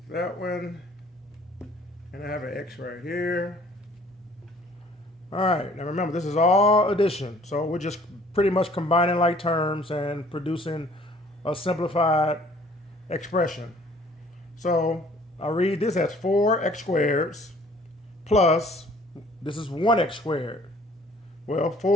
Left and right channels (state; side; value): normal; both; correlation 0.55